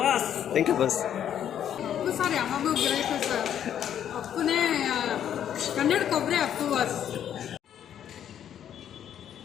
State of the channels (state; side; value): quieter; right; 9.8 dB